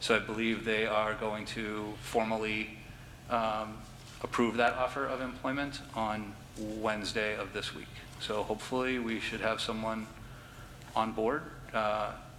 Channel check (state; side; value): identical; both; correlation 1.00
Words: I believe they are going to formally approve that offer of employment on Wednesday of this week. So hopefully we should have someone on board,